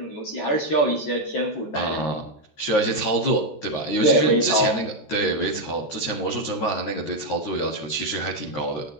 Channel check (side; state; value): right; late; 14 ms